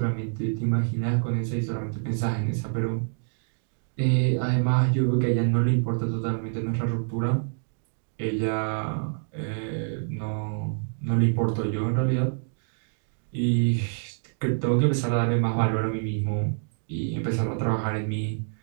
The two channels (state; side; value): silent; left; 60 dB below the other